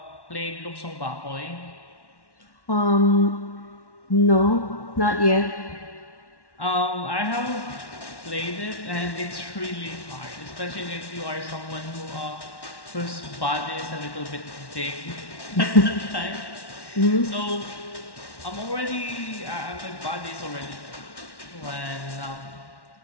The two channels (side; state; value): right; late; 1.1 ms